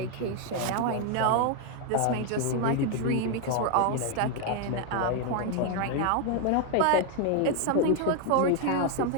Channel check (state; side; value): different; both; correlation 0.01